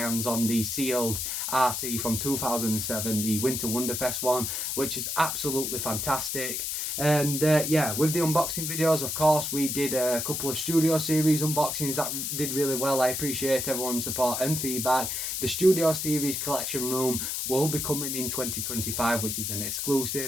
on the sealed RC from 2007, the Winter Wonderfest one, which is absolutely fantastic. And yeah, with the unboxing videos, of course, we did a couple of Studio Series unboxings that did really well. I appreciate everyone's support and feedback. The Studio Series collection room will be coming in 2025, which is an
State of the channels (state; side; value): noise; left; hiss, 2 dB below the sound